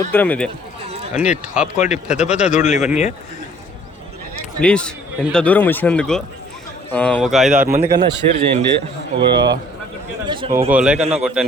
ఇది. అన్నీ టాప్ క్వాలిటీ పెద్ద దూడలు ఇవన్నీ. ప్లీజ్ ఎంత దూరం వచ్చినందుకు ఒక 5-6 మంది కన్నా షేర్ చేయండి. ఒక లైక్ అన్నా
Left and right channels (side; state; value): both; normal; correlation 0.57